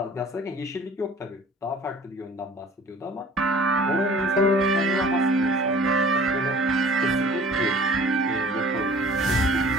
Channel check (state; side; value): normal; both; correlation 0.48